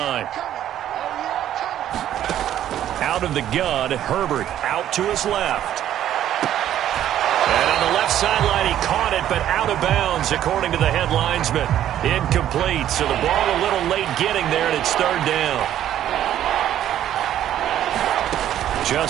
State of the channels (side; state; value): left; quieter; 11.5 dB